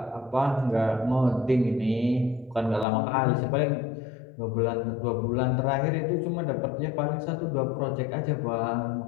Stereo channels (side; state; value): right; drops out; at 2.9 s